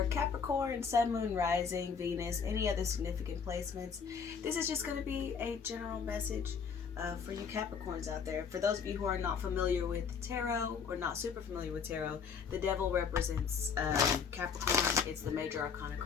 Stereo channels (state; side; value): quieter; right; 6.3 dB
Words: Capricorn, Sun, Moon, Rising, Venus, any other significant placements. This is just going to be a general message for you Capricorns out there. For those of you who are not familiar with tarot or not super familiar with tarot, the devil represents Capricorn. It's the major arcana